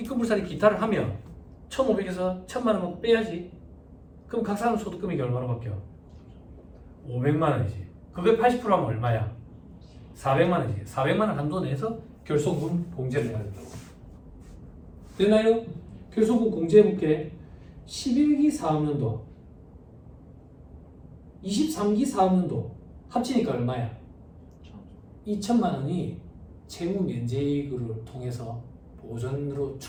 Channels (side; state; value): both; identical; correlation 1.00